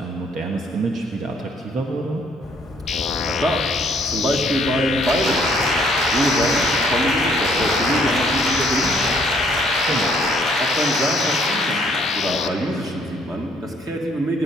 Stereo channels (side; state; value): both; normal; correlation 0.64